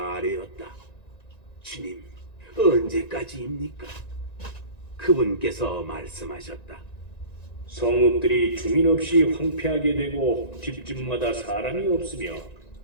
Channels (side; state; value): right; late; 1.9 ms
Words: 아뢰었다. 주님, 언제까지입니까? 그분께서 말씀하셨다. 성읍들이 주민 없이 황폐하게 되고 집집마다 사람이 없으며